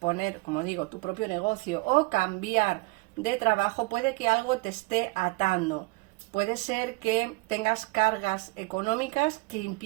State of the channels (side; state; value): left; quieter; 25.9 dB